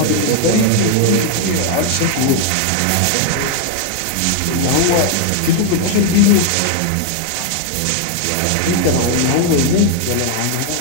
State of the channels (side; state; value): both; different; correlation 0.00